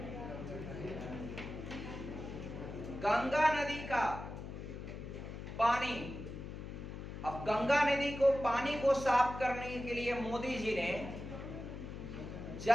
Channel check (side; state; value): left; noise; hum, 9 dB below the sound